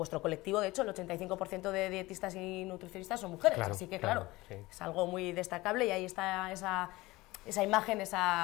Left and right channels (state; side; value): quieter; right; 20.2 dB